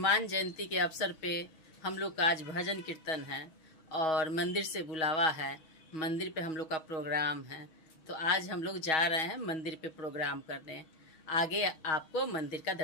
जयंती के अवसर पे हम लोग का आज भजन कीर्तन है और मंदिर से बुलावा है। मंदिर पे हम लोग का प्रोग्राम है। तो आज हम लोग जा रहे हैं मंदिर पे प्रोग्राम करने। आगे आपको मंदिर का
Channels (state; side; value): late; right; 6.3 ms